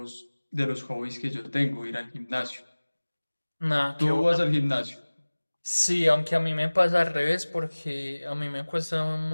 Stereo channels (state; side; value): inverted; both; correlation -1.00